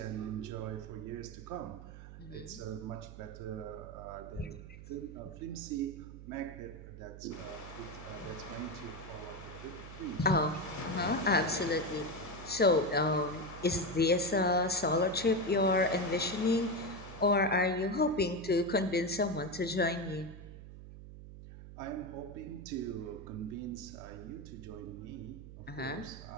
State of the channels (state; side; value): noise; right; hum, 14 dB below the sound